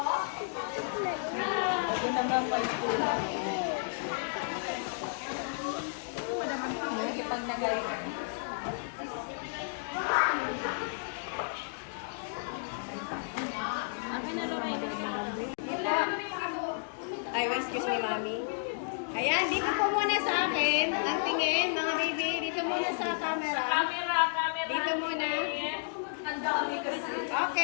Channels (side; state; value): right; silent; digital silence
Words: Ako naman may tulad. Pag nagay. Ay, excuse me, mami. Ayan, dito po muna sa akin. Ang tingin, mga baby. Dito muna sa camera. Camera. Dito muna.